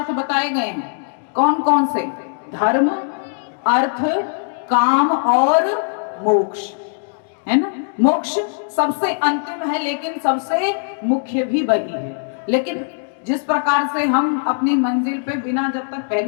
बताए गए हैं। कौन कौन से? धर्म, अर्थ, काम और मोक्ष, है ना। मोक्ष सबसे अंतिम है लेकिन सबसे मुख्य भी वही है। लेकिन जिस प्रकार से हम अपनी मंजिल पे बिना जब तक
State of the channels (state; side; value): silent; right; digital silence